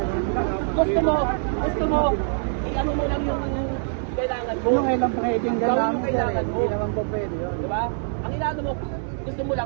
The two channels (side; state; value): left; silent; 62 dB below the other